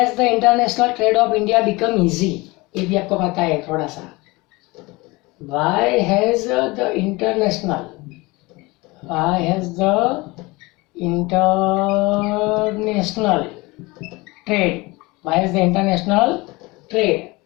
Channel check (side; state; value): right; quieter; 23.3 dB